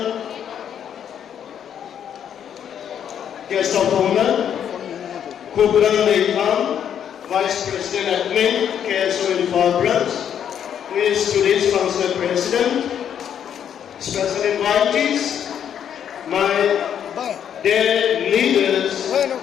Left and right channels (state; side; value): quieter; right; 9.0 dB